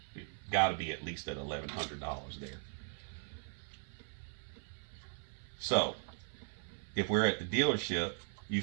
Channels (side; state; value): left; silent; 52 dB below the other